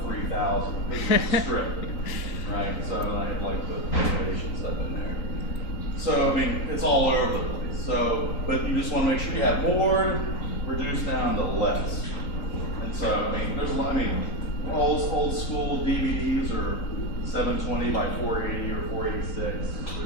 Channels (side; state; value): right; late; 3.8 ms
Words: 3,000 pixel strip, right? So then I had like the animation stuff in there. So I mean, it's all over the place. So, but you just want to make sure you have more, reduce down to less. And so I mean, there's a lot. I mean, old school DVDs are 720 by 480 or 486.